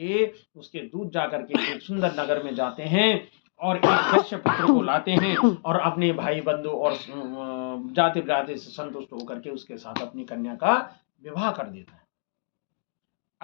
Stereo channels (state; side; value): silent; right; digital silence